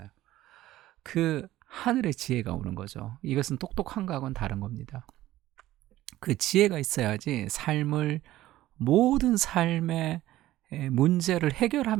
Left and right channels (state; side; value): quieter; left; 15.3 dB